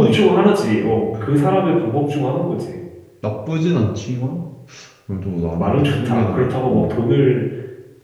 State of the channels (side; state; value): both; identical; correlation 1.00